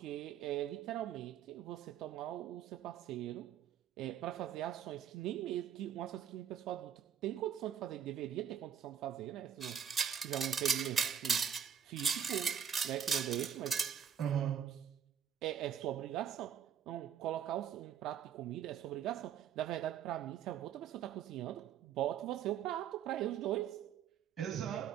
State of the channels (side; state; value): left; quieter; 8.5 dB